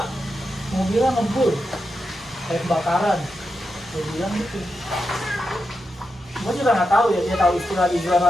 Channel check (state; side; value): normal; both; correlation 0.87